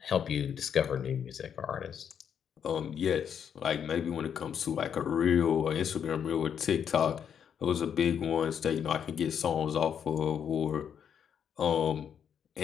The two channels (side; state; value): right; quieter; 8.1 dB